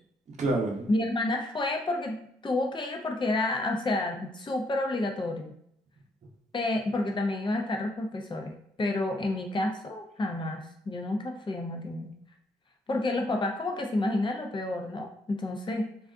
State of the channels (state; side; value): normal; both; correlation 0.72